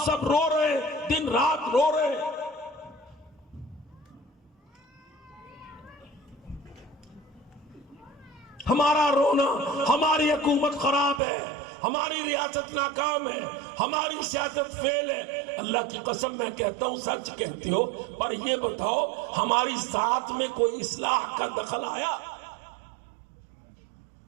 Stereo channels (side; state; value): left; drops out; at 11.2 s